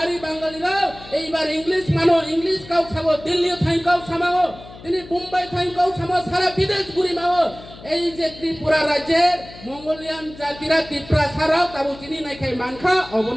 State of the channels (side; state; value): left; noise; hum, 18 dB below the sound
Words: বাঙালিরা এইবার ইংলিশ মানো, ইংলিশ কাউ খাবো, দিল্লি থাইকাও সামাও, তিনি মুম্বাই থাইকাও সামাও, সারা বিদেশ ঘুরি মাও। এই যে ত্রিপুরা রাজ্যের মঙ্গোলিয়ান জাতিরা ত্রিপুরা ছাড়াও তাবু চিনি নাই খাই মানখা